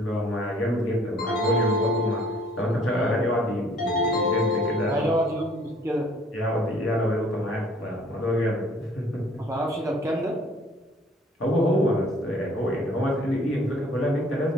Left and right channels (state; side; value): normal; both; correlation 0.57